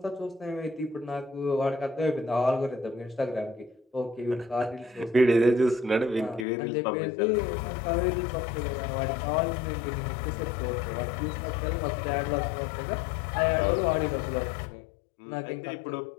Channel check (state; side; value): drops out; right; at 6.5 s